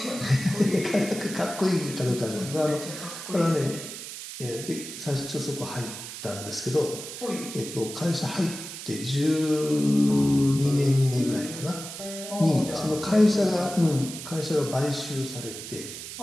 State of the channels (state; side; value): noise; right; hiss, 10 dB below the sound